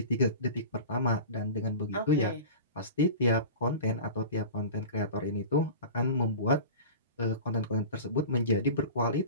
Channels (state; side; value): inverted; both; correlation -0.34